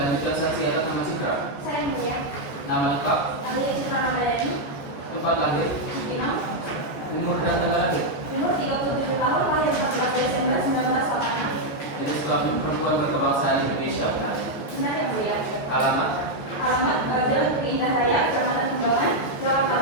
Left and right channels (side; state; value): right; late; 14 ms